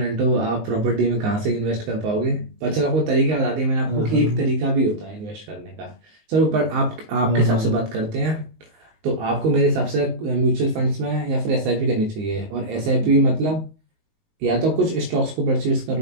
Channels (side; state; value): left; late; 19 ms